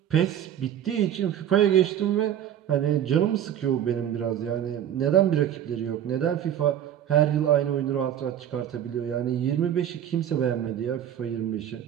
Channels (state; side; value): quieter; left; 10.2 dB